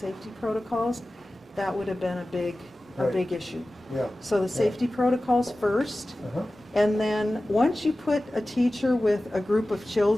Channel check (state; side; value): normal; both; correlation 0.96